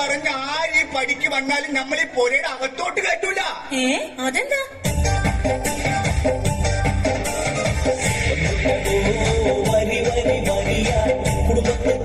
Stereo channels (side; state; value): both; identical; correlation 1.00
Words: ആര് ഈ പടിക്ക് വന്നാലും നമ്മൾ ഈ പുരയുടെ അകത്തോട്ട് കയറ്റൂല. അതെന്താ? വരി വരി വരിയ കുടുംബത്തെ